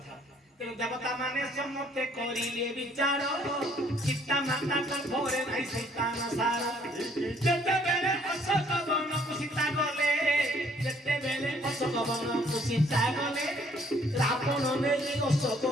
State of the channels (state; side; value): normal; both; correlation 0.63